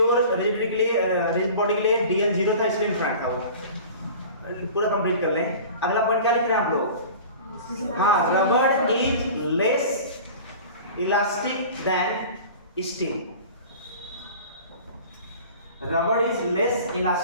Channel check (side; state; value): both; inverted; correlation -0.40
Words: रिजिडिटी के लिए रिजिड बॉडी के लिए DL 0 था इसलिए इन्फिनिट था वो। पूरा कंप्लीट कर लें। अगला पॉइंट क्या लिख रहे हैं आप लोग? हाँ, rubber is less elastic than steel. Rubber is less